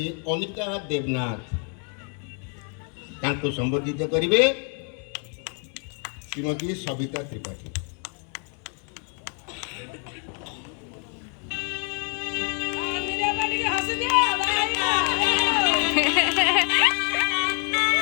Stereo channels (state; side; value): quieter; right; 39.7 dB